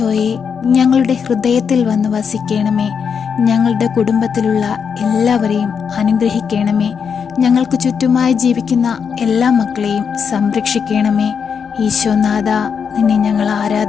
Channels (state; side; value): quieter; right; 6.6 dB